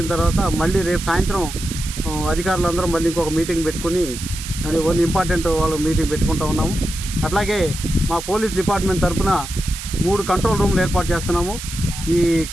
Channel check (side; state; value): right; noise; hiss, 10 dB below the sound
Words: తర్వాత మళ్ళీ రేపు సాయంత్రం అధికారులందరం మళ్ళీ ఇంకొక మీటింగ్ పెట్టుకుని కొన్ని ఇంపార్టెంట్ వాళ్ళు మీటింగ్ పెట్టుకుంటూ ఉన్నాము. అట్లాగే మా పోలీస్ డిపార్ట్మెంట్ తరఫున 3 కంట్రోల్ రూమ్లు ఏర్పాటు చేస్తున్నాము. ఈ